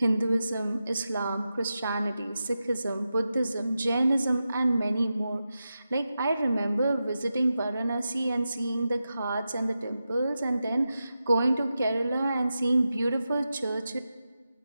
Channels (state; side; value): inverted; both; correlation -0.91